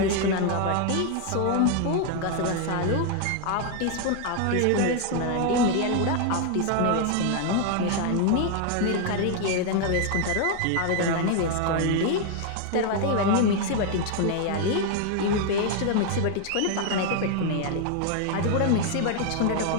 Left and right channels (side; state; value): both; different; correlation 0.00